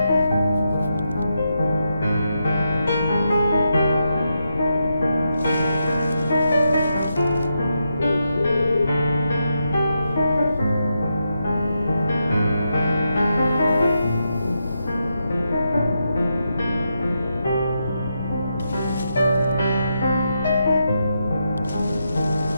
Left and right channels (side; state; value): both; inverted; correlation -0.84